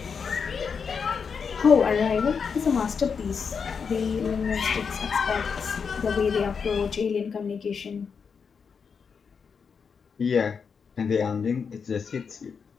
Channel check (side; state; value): right; quieter; 6.0 dB